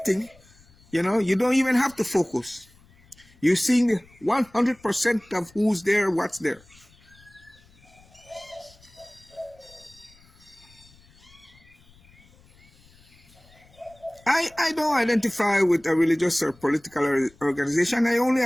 you don't even have to focus. You're seeing 100% of who's there, what's there. I don't identify with a religious or political organization. I only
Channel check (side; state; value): left; noise; rumble, 28 dB below the sound